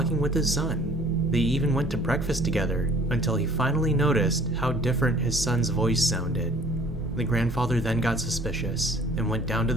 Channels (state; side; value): normal; both; correlation 0.53